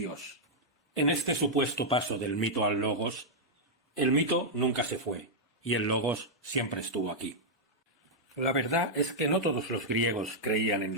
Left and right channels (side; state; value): both; normal; correlation -0.06